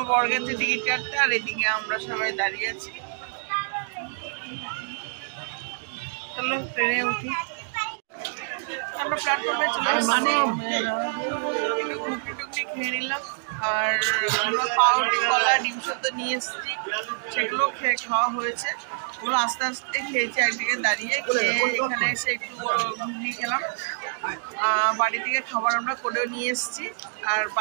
বর গেছে টিকিট কাটতে, আর এদিকে আমরা সবাই দাঁড়িয়ে আছি। চলো ট্রেনে উঠি। আমরা প্ল্যাটফর্মে চলে এসেছি, টুকটি খেয়ে নিলাম। আর আমরা পাউরুটি, কলা, ডিম সেদ্ধ নিয়ে এসেছি, সেগুলো খাওয়া হয়েছে। ওগুলো আস্তে আস্তে খেয়েছি একদিকে দাঁড়িয়ে। খেয়ে এখানে এসে একটু ঘুগনি খেলাম। বাড়ি থেকে খাবার আমরা করেও নিয়ে এসেছি, আর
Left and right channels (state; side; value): silent; left; digital silence